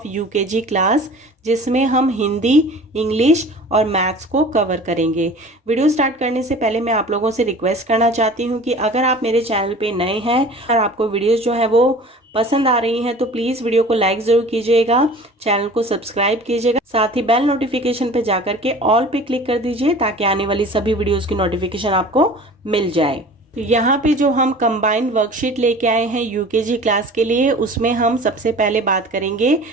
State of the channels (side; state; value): both; normal; correlation 0.42